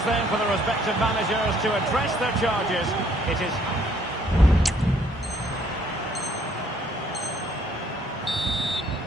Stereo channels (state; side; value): normal; both; correlation 0.64